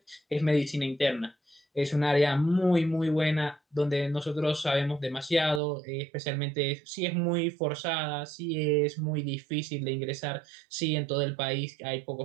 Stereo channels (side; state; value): left; drops out; at 5.6 s